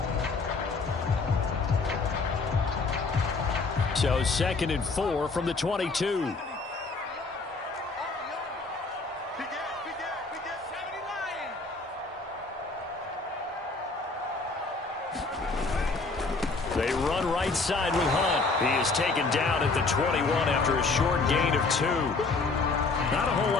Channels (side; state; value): right; quieter; 3.9 dB